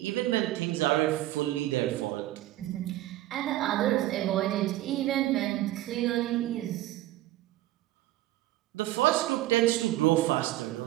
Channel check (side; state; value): left; quieter; 15.7 dB